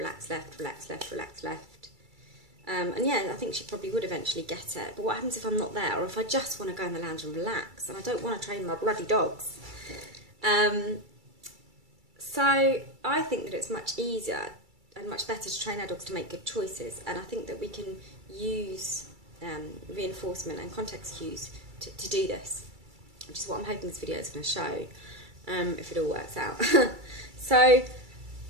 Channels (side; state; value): left; late; 2.3 ms